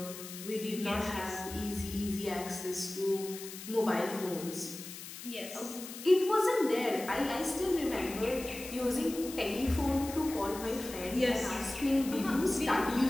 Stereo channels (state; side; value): noise; left; hiss, 12 dB below the sound